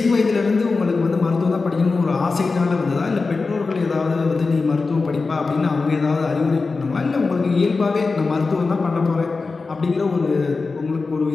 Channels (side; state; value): right; quieter; 4.1 dB